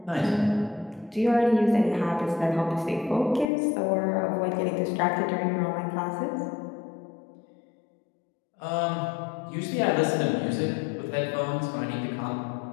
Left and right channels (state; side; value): drops out; right; at 3.5 s